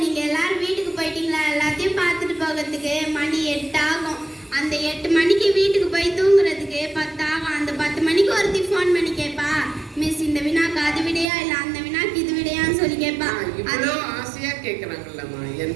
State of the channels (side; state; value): left; drops out; at 11.2 s